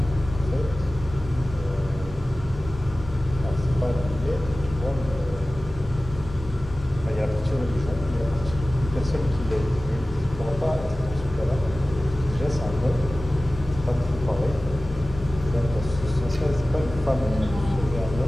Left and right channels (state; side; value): normal; both; correlation 0.96